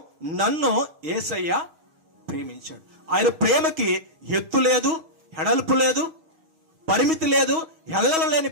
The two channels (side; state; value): left; late; 6.3 ms